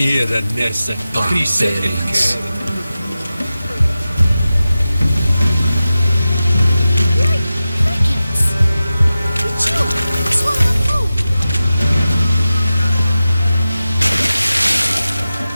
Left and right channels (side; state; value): both; inverted; correlation -0.94